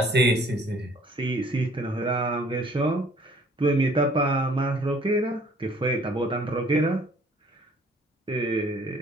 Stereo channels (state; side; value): normal; both; correlation 0.57